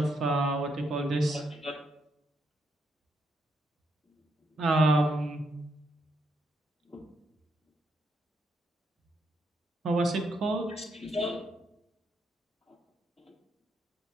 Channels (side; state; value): both; normal; correlation 0.78